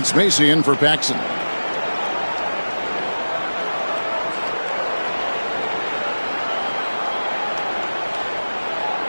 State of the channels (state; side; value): inverted; both; correlation -1.00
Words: Macy in for Paxson.